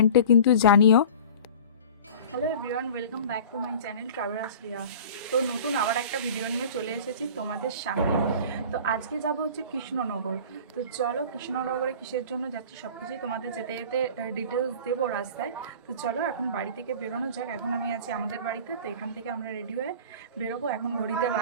কিন্তু জানিও। Hello everyone, welcome back to my channel travellers Riya. তো নতুন আবার একটা ভিডিও নিয়ে চলে এসেছি তোমাদের সামনে। তো আজকে যাব হচ্ছে কৃষ্ণনগর। তো চলো কৃষ্ণনগরে কিসের জন্য যাচ্ছি সব কিছুই তোমাদের যেতে যেতে ডিটেলস দেবো রাস্তায়। তো চলো এখন বাড়ি থেকে বেরোনো যাক। এখন আমি আছি আমাদের বাড়িতে, তো এখান থেকে আমরা রেডি হয়ে বেরোবো। এখন ঘড়িতে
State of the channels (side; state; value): both; inverted; correlation -0.40